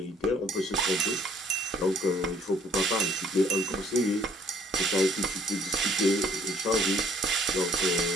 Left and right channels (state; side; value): normal; both; correlation 0.59